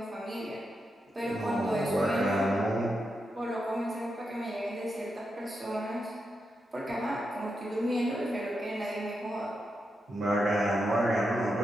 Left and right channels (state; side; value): normal; both; correlation 0.86